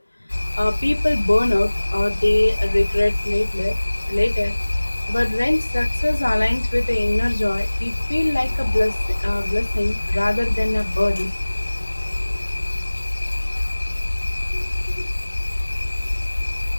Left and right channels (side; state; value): both; inverted; correlation -1.00